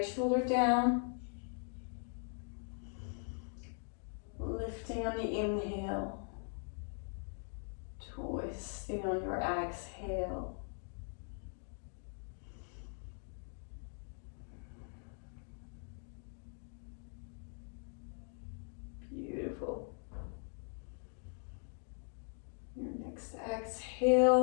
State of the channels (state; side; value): silent; right; 51 dB below the other